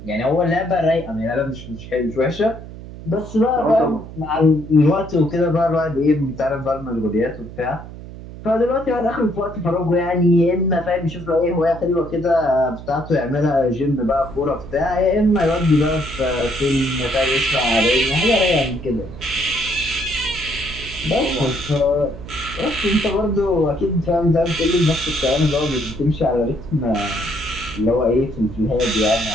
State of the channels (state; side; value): noise; right; hum, 13 dB below the sound